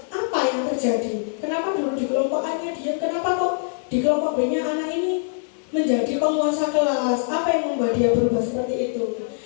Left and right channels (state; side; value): silent; right; digital silence